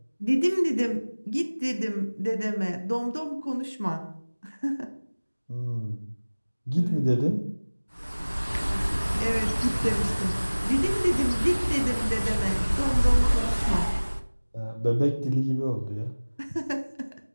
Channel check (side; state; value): both; inverted; correlation -1.00